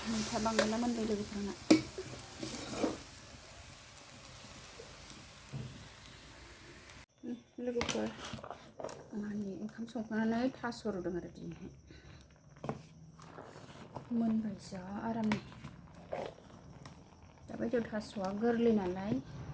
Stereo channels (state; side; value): identical; both; correlation 1.00